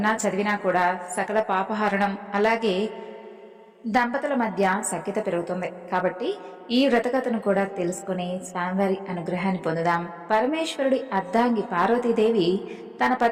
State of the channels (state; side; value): identical; both; correlation 1.00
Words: చదివినా కూడా సకల పాపహరణం, అలాగే దంపతుల మధ్య సఖ్యత పెరుగుతుంది. కాబట్టి ఈ వ్రతకథను కూడా తెలుసుకుని స్వామివారి అనుగ్రహాన్ని పొందుదాం. పరమేశ్వరుడి అర్ధాంగి పార్వతీదేవి తన